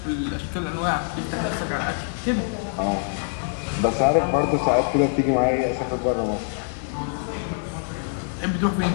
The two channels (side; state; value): right; silent; 62 dB below the other